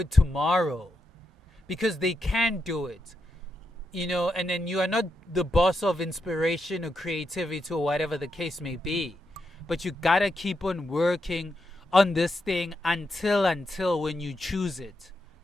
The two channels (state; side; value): normal; both; correlation 0.84